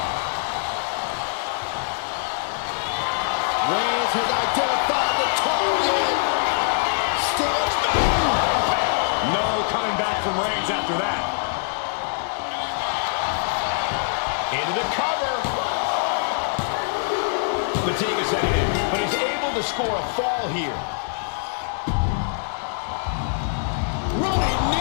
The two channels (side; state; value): right; silent; digital silence